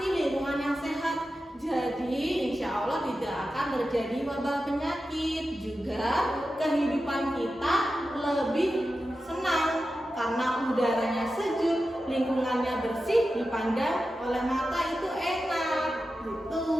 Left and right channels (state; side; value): normal; both; correlation 0.92